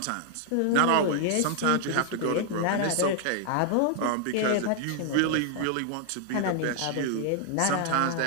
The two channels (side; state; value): both; different; correlation 0.00